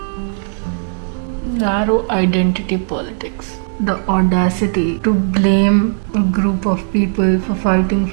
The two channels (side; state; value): left; silent; digital silence